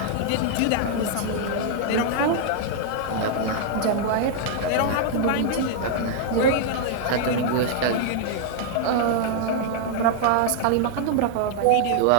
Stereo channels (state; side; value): different; both; correlation -0.01